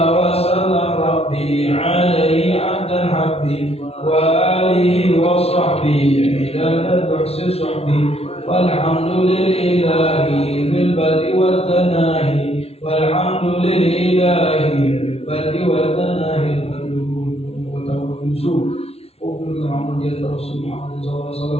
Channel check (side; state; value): right; late; 0.30 ms